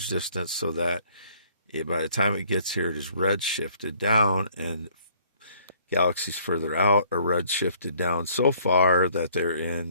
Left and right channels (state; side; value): inverted; both; correlation -0.60